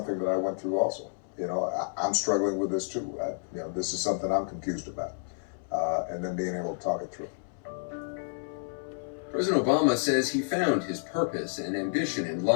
that I went through also. I'm struggling with this too. This is something I'm confused about. And then being able to talk it through. President Obama says he found his purpose and ambition in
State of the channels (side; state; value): right; silent; 58 dB below the other